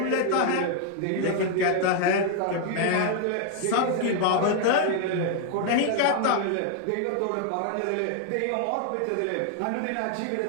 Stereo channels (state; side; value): different; both; correlation 0.00